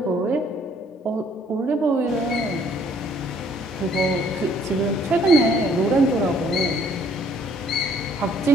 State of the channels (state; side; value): normal; both; correlation 0.62